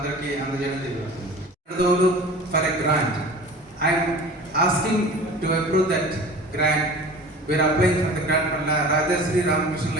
అందజేయడం జరుగుతుంది. For a grant I'm asking to approve that grant. We are applying for the grant for Rajasri Ramakrishna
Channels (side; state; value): both; normal; correlation 0.39